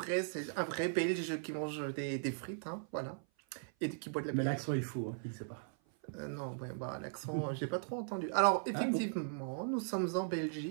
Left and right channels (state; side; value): silent; left; 52 dB below the other